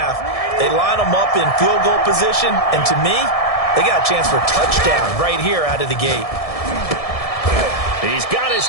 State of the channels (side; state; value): right; late; 1.7 ms